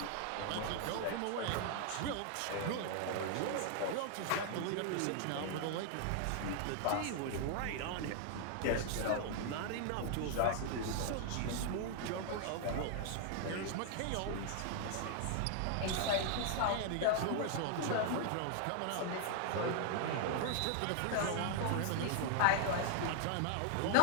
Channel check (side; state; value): both; different; correlation 0.00